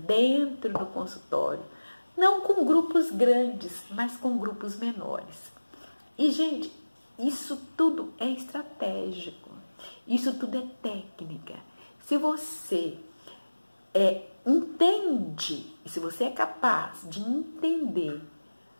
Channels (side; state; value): both; inverted; correlation -1.00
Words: do consultório, não com grupos grandes, mas com grupos menores. E, gente, isso tudo é estratégico, isso tudo é técnica. Se você entende, se você é capaz de entender